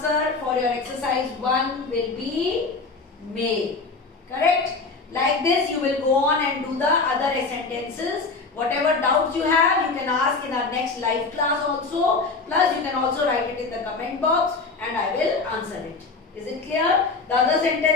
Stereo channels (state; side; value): quieter; right; 4.1 dB